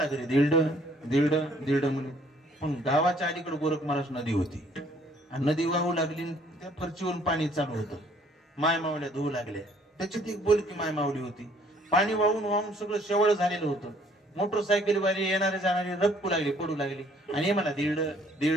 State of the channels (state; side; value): normal; both; correlation 0.61